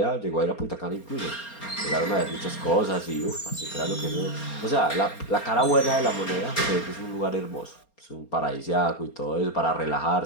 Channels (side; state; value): right; late; 4.3 ms